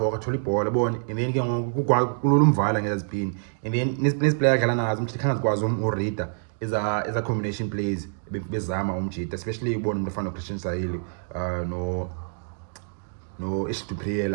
akathola ibhola yabona, and then ke ngoku kulula umvala ngezipini, and then nesiplayer adlala nazo umjita khanga zikwazi ureader eza combination plays bezama umjita, especially ubona umuntu ofana noChristian Sahili no Ishtupriya,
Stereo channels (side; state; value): left; silent; digital silence